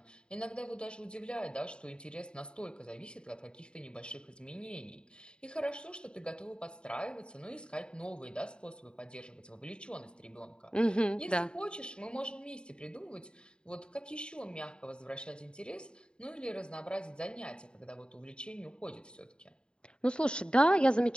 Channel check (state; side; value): late; right; 0.050 ms